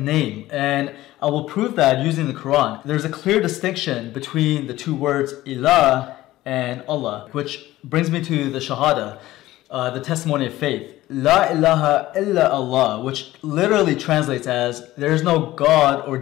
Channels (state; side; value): quieter; right; 16.2 dB